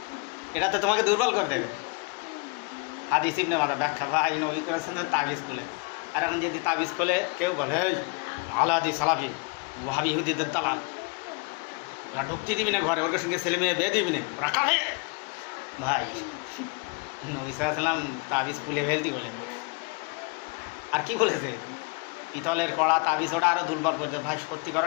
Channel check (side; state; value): right; quieter; 30.9 dB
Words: এটা তো তোমাকে দুর্বল করে দেবে। হাদিস ইবনে মাজাহ ব্যাখ্যা, ভাই নবী করিম সাল্লাল্লাহু আলাইহি ওয়াসাল্লাম তাবিজ খুলে, আর এখন যদি তাবিজ খুলে কেউ বলে এই আলাদি সালাফি ওয়াহাবি ইহুদিদের দালাল, ওরা ঢুকতে দিবি না ঘরে, ওর সঙ্গে ছেলে মেয়ে বিয়ে দিবি না, ওরা কাঁদে। ভাই নবী সাল্লাল্লাহু আলাইহি ওয়াসাল্লাম তাবিজ খুলে ফেলতি বলে, আর কি বলেছে? পিতলের কড়া তাবিজ ওটা আরও দুর্বল করে দেয়। ভাই সত্যি